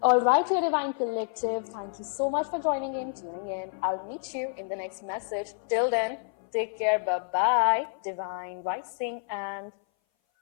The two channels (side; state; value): right; silent; 58 dB below the other